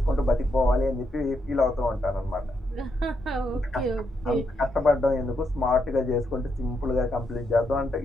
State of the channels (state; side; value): normal; both; correlation 0.80